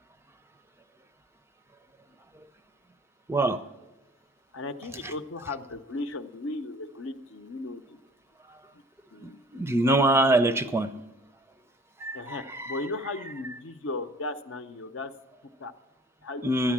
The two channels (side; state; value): both; normal; correlation 0.52